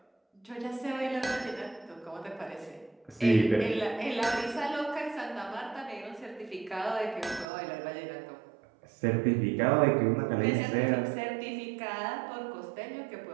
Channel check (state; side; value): drops out; left; at 7.5 s